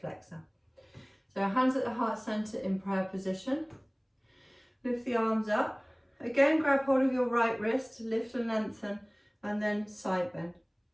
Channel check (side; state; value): both; identical; correlation 1.00